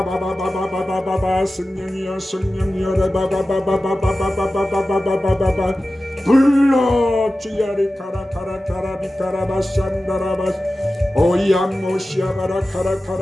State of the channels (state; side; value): normal; both; correlation 0.95